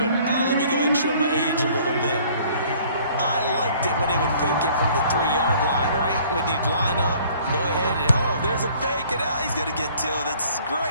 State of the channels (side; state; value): both; inverted; correlation -0.56